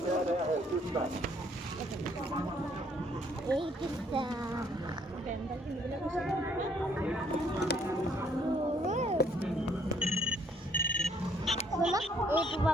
সেয়া দিয়া হয়। এইটো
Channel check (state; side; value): normal; both; correlation 0.66